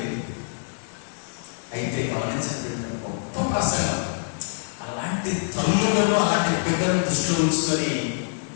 అయితే గమనించండి, గొప్ప ప్రసంగం అలాంటి తల్లులను అలాంటి బిడ్డలను దృష్టిలో ఉంచుకొని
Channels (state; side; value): silent; right; 62 dB below the other